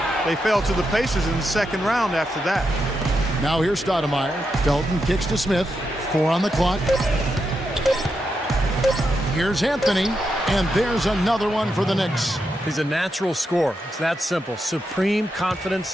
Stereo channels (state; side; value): normal; both; correlation 0.84